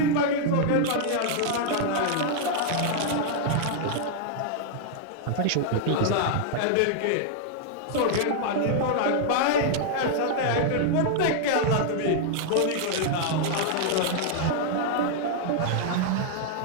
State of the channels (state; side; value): different; both; correlation -0.01